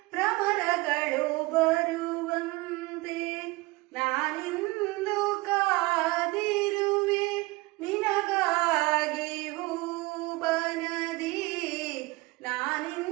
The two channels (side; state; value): left; quieter; 22.6 dB